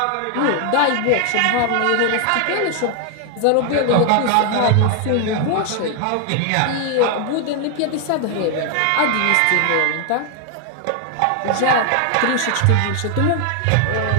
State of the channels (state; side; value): different; both; correlation 0.00